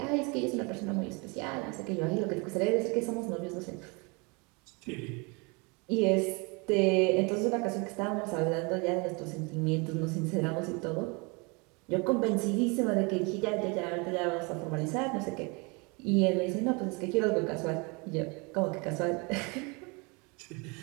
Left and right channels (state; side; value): quieter; left; 29.8 dB